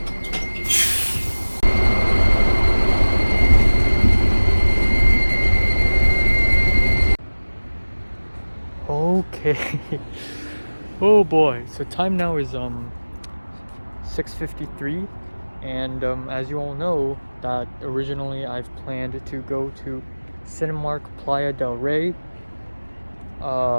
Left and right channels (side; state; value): both; inverted; correlation -1.00